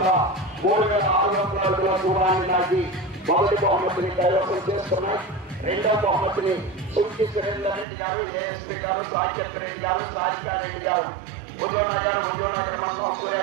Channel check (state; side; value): drops out; left; at 7.9 s